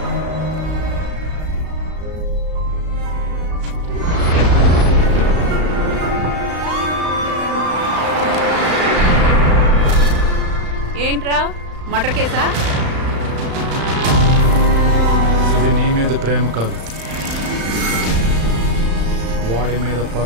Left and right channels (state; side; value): late; left; 35 ms